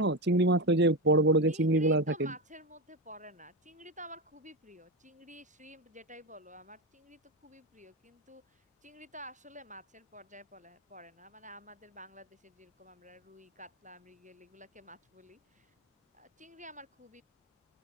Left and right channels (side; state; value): both; normal; correlation 0.16